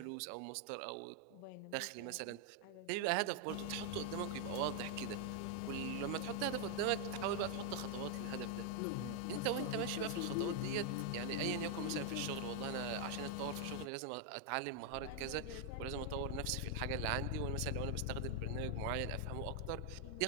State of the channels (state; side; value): different; both; correlation 0.00